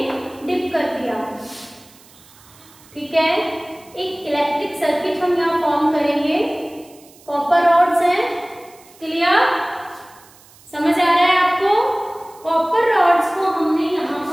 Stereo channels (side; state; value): right; noise; hiss, 26 dB below the sound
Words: डिप कर दिया, ठीक है। एक इलेक्ट्रिक सर्किट हम यहाँ फॉर्म करेंगे। कॉपर रॉड्स हैं, क्लियर, समझ आ रहा है आपको। कॉपर रॉड्स को हमने यहाँ